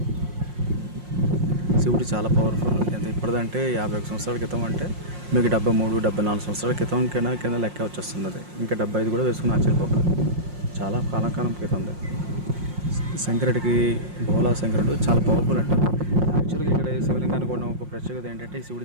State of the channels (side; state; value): left; late; 5.6 ms